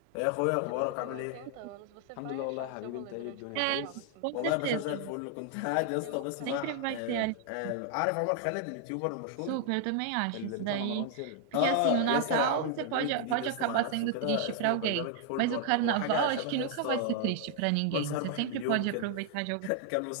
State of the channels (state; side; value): different; both; correlation 0.00